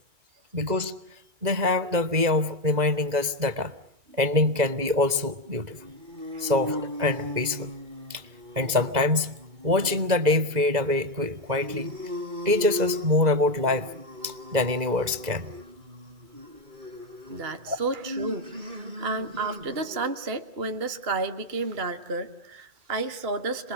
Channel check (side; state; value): left; late; 2.0 ms